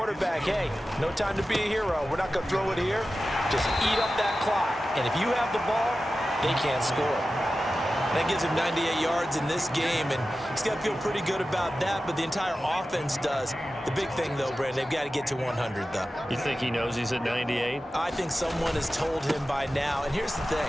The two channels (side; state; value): both; normal; correlation 0.94